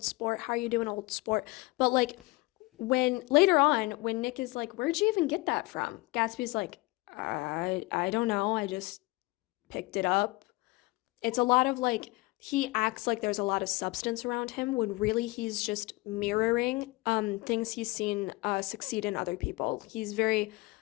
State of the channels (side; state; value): right; quieter; 22.9 dB